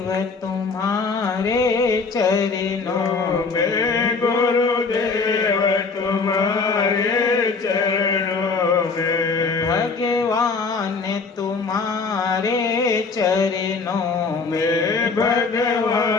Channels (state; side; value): quieter; right; 4.5 dB